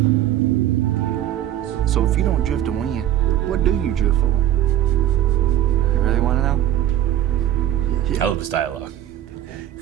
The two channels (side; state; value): left; quieter; 11.7 dB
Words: So if you don't drift to win, what do you drift for? You really want to know? I love this dialogue.